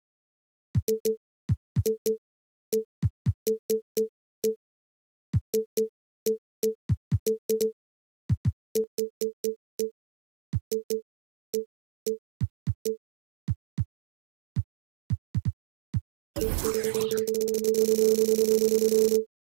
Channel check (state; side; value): drops out; left; at 8.8 s